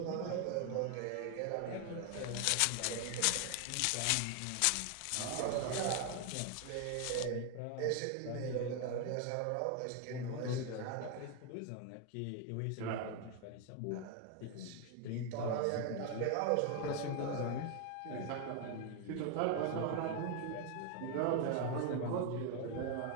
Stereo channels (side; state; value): both; different; correlation 0.01